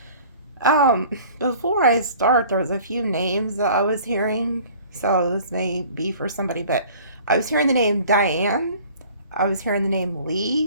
Before I start, there was a few names that I was hearing. So this may be for somebody, but I was hearing the name Diane. I was hearing the name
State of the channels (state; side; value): inverted; both; correlation -0.48